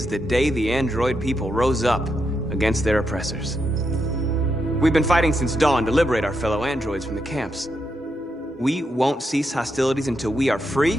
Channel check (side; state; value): both; normal; correlation 0.82